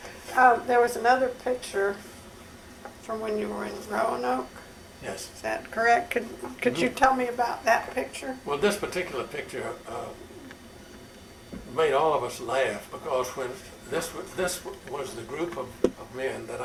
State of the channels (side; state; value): both; identical; correlation 1.00